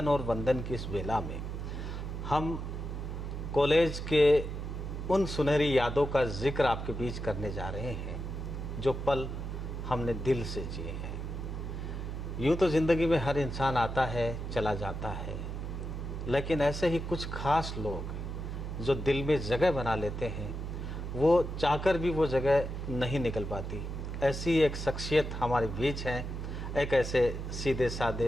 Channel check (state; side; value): noise; right; hum, 5 dB below the sound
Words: और वंदन की इस बेला में हम कॉलेज के उन सुनहरी यादों का जिक्र आपके बीच करने जा रहे हैं जो पल हमने दिल से जिए हैं। यूँ तो ज़िंदगी में हर इंसान आता है, चला जाता है, लेकिन ऐसे ही कुछ खास लोग जो दिल में जगह बना लेते हैं, वो चाहकर भी वो जगह नहीं निकल पाती। ऐसी एक शख्सियत हमारे बीच हैं, एक ऐसे सीधे